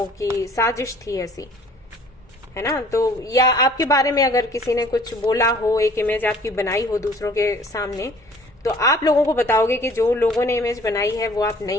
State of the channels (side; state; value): both; normal; correlation 0.53